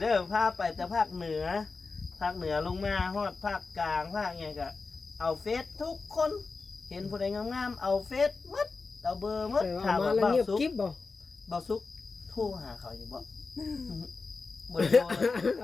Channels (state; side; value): quieter; right; 4.2 dB